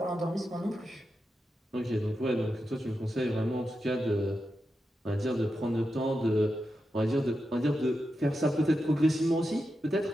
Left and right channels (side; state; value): both; normal; correlation 0.89